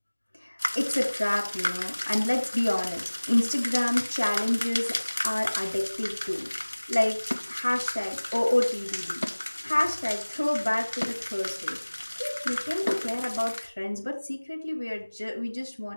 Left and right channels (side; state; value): both; inverted; correlation -1.00